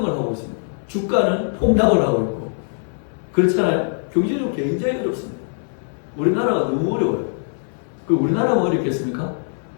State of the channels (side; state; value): right; silent; 62 dB below the other